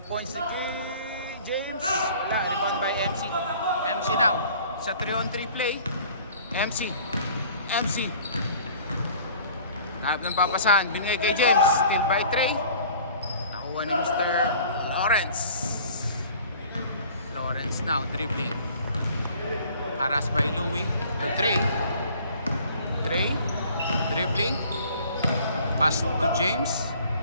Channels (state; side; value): inverted; both; correlation -0.50